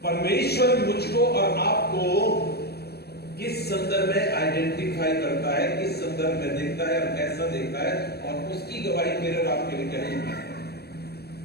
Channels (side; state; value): right; late; 0.47 ms